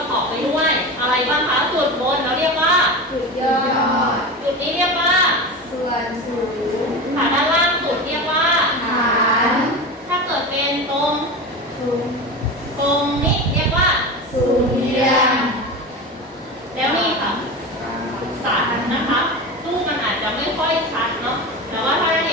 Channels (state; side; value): normal; both; correlation 0.25